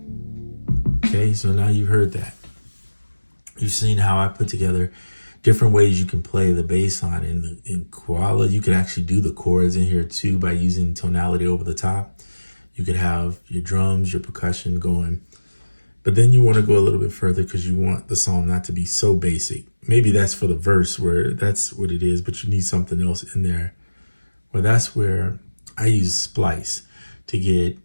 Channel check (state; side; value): inverted; both; correlation -1.00